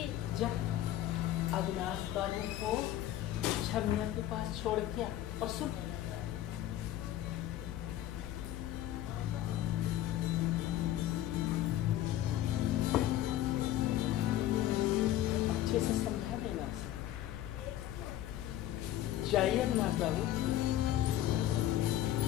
जा अविनाश बाबू को छमिया के पास छोड़ के आ। और सुन, अच्छे से समझा देना उसे। जाइए अविनाश बाबू।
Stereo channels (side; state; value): right; quieter; 13.1 dB